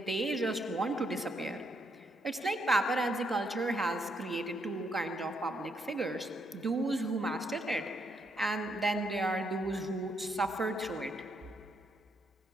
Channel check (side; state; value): both; normal; correlation 0.75